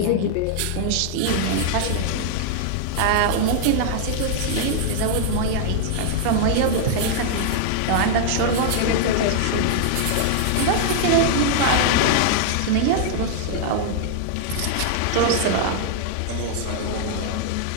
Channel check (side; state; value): both; different; correlation -0.01